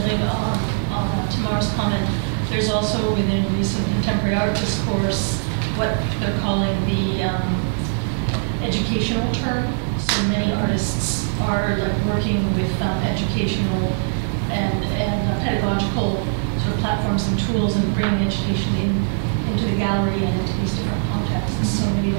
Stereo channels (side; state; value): left; silent; digital silence